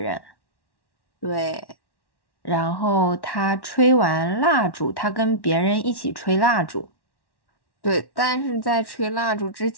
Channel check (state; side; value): late; right; 1.1 ms